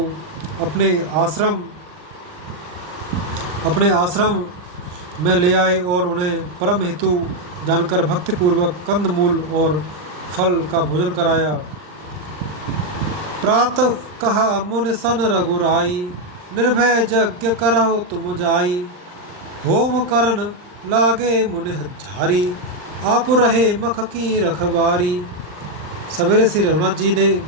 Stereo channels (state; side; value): late; left; 40 ms